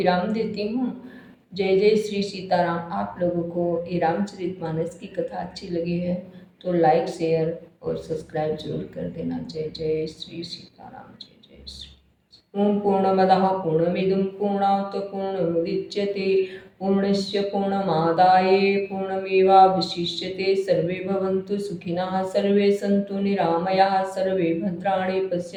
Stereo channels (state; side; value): identical; both; correlation 1.00